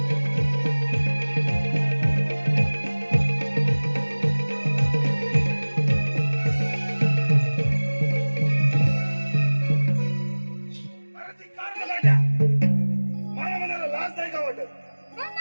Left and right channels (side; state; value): both; inverted; correlation -1.00